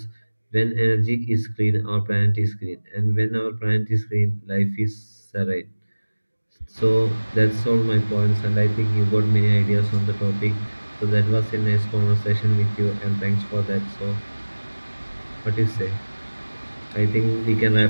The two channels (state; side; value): inverted; both; correlation -1.00